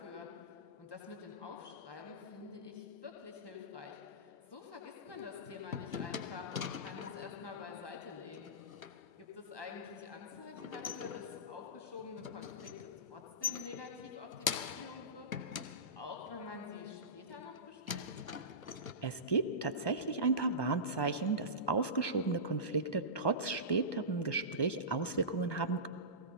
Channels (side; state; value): right; late; 1.2 ms